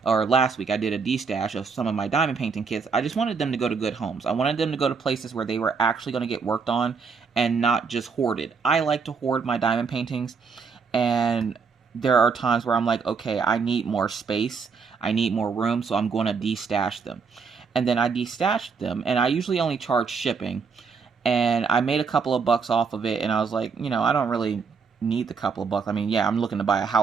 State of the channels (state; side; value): quieter; left; 5.4 dB